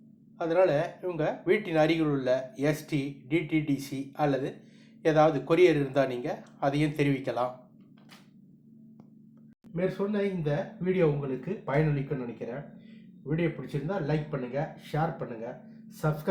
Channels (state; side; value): identical; both; correlation 1.00